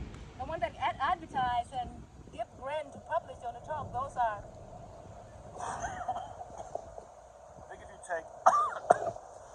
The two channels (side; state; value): both; identical; correlation 1.00